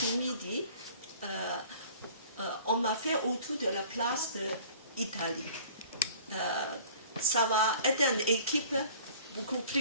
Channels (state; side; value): inverted; both; correlation -0.48